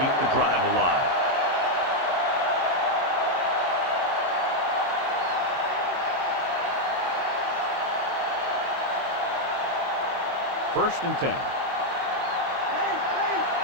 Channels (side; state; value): left; late; 23 ms